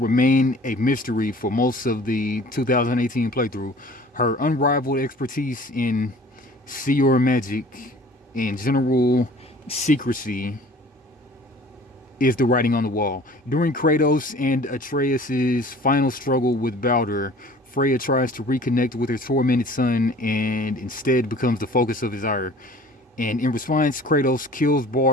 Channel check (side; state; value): both; normal; correlation 0.48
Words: a mystery for most of the 2018 playthrough, her unrivaled expertise in seer magic and general secrecy is the writing on the wall. During Kratos and Atreus' final struggle with Baldur, Freya tries to reconnect with her tormented son and instead becomes the focus of his ire. And in response, Kratos kills